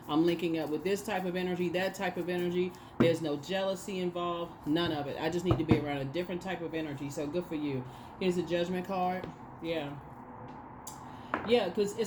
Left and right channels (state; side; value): identical; both; correlation 1.00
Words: I'm linking up with this type of energy, that type of energy. There's no jealousy involved. None of it. I just need to be around a different type of energy. So good for you. Here's a Judgment card. Yeah. Yeah, because